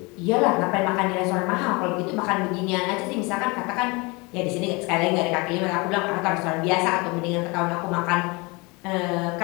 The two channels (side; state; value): right; quieter; 26.7 dB